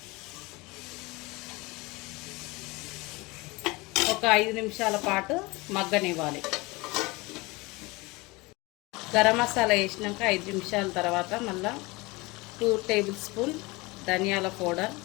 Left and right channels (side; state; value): right; quieter; 23.9 dB